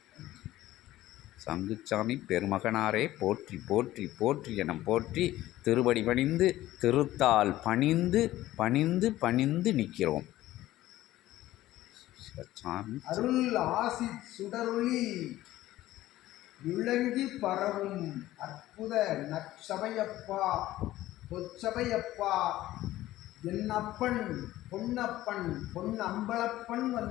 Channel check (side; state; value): right; quieter; 15.3 dB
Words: சங்குச்சாமி பெருமகனாரே போற்றி போற்றி போற்றி என போற்றி திருவடி பணிந்து, திருத்தால் பணிந்து பணிந்து பணிந்து நிற்கிறோம். அருள் ஆசி சுடரொளி விளங்கி பரவும் அற்புத நற்சபையப்பா, பொற்சபையப்பா, என்னப்பன் பொன்னப்பன் பொன்னம்பலப்பன்